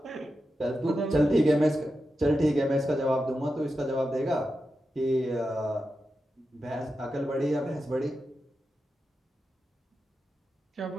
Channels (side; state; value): both; normal; correlation 0.89